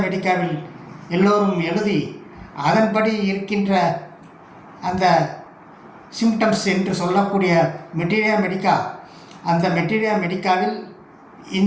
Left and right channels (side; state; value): both; identical; correlation 1.00